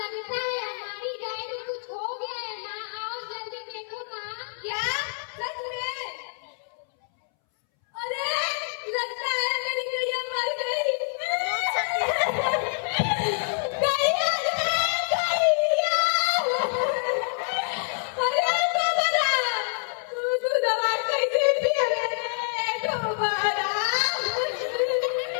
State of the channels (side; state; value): right; silent; 61 dB below the other